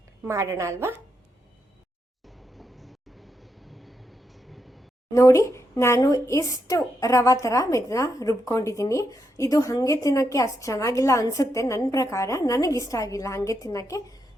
ಮಾಡೋಣ ಅಲ್ವಾ? ನೋಡಿ, ನಾನು ಇಷ್ಟು ರವ ಥರ ಇದನ್ನ ರುಬ್ಕೊಂಡಿದ್ದೀನಿ. ಇದು ಹಾಗೆ ತಿನ್ನೋಕ್ಕೆ ಅಷ್ಟು ಚೆನ್ನಾಗಿಲ್ಲ ಅನಿಸುತ್ತೆ ನನ್ನ ಪ್ರಕಾರ. ನನಗಿಷ್ಟ ಆಗಿಲ್ಲ ಹಾಗೆ ತಿನ್ನೋಕ್ಕೆ.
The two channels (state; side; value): normal; both; correlation 0.82